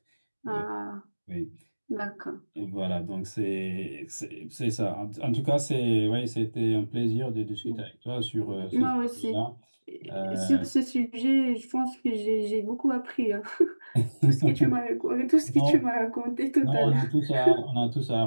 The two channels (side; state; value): both; inverted; correlation -1.00